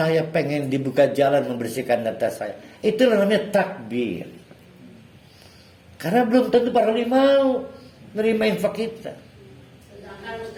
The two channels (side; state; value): both; identical; correlation 1.00